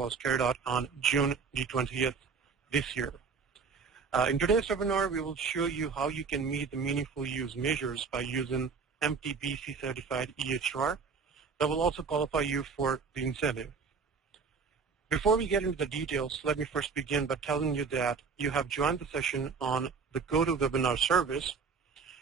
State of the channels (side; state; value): left; quieter; 5.3 dB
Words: carried out on June the 20th this year. In today's webinar, we will show you how you can meet the Meaningful Use measures by using MTBC certified EHR that will also qualify you for the incentive. Before we get into the details, let me first begin by telling you that you have joined the session on the GoToWebinar service.